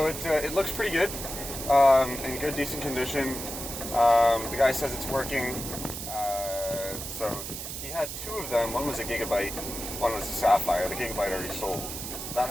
it looks pretty good. In good, decent condition. The guy says it's working. So he had 2 of them. One was a Gigabyte, one was a Sapphire. The Gigabyte already sold. That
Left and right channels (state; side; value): noise; right; hiss, 7 dB below the sound